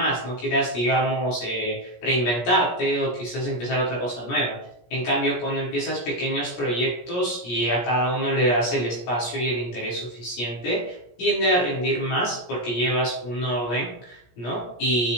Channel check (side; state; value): right; late; 17 ms